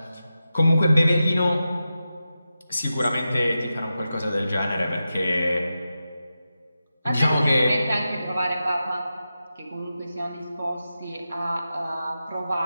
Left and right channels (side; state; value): both; inverted; correlation -0.91